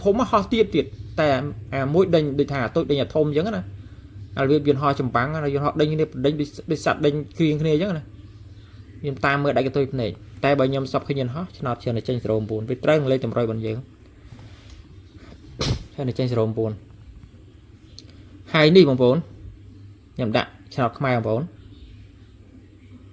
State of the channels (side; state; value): both; identical; correlation 1.00